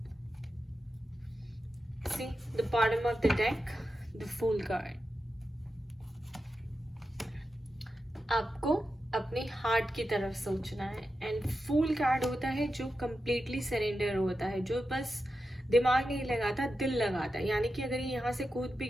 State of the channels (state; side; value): normal; both; correlation 0.90